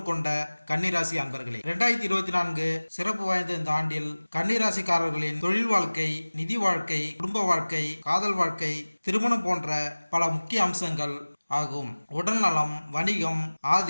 கொண்ட கன்னிராசி அன்பர்களே, 2024 சிறப்பு வாய்ந்த இந்த ஆண்டில் கன்னிராசிக்காரர்களின் தொழில் வாழ்க்கை, நிதி வாழ்க்கை, குடும்ப வாழ்க்கை, காதல் வாழ்க்கை, திருமணம் போன்ற பல முக்கிய அம்சங்கள் ஆகும். உடல்நலம், வணிகம்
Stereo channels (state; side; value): inverted; both; correlation -1.00